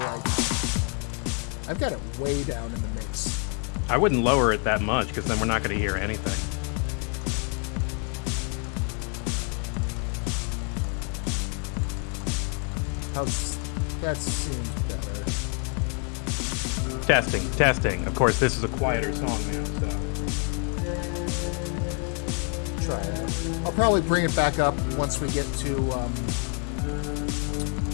I've got it way down in the mix. I wouldn't lower it that much because then we're not going to hear anything. Testing, testing. Of course, this is a quieter song now, so. I'll probably bring it back up once we get to new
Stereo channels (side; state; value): right; quieter; 39.0 dB